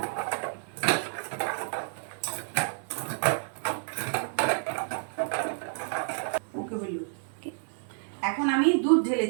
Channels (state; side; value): silent; left; 55 dB below the other